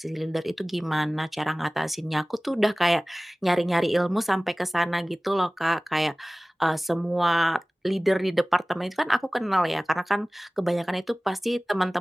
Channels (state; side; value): normal; both; correlation 0.98